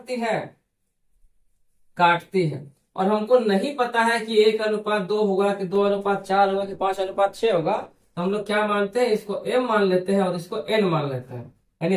है, काटती है। और हमको नहीं पता है कि 1:2 होगा कि 2:4 होगा कि 5:6 होगा। तो हम लोग क्या मानते हैं, इसको m मान लेते हैं और इसको n मान लेते हैं। यानी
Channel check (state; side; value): identical; both; correlation 1.00